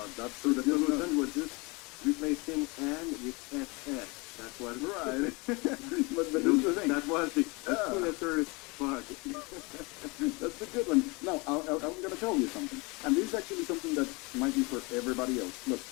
that's So the good enough. solution was just replacing "and" with "ss." That was Right. But you here's know, the thing. that was the Yeah. two letters bug. That's a good one. No, I'm going to tell you something. And this is actually something that might be for everybody else. Look,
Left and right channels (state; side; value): quieter; right; 27.1 dB